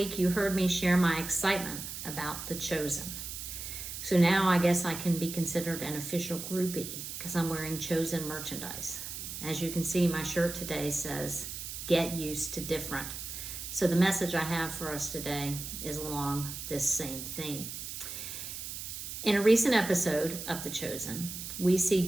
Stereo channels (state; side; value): noise; right; hiss, 7 dB below the sound